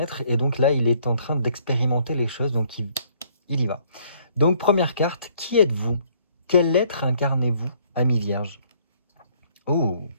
et donc là, il est en train d'expérimenter les choses, donc il y va. Donc, première carte, qui êtes-vous? Quel être incarnez-vous, ami vierge? Oh!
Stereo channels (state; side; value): inverted; both; correlation -0.63